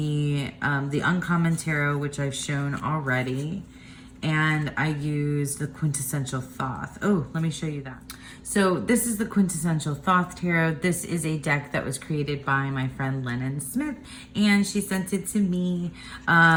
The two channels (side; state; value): both; identical; correlation 1.00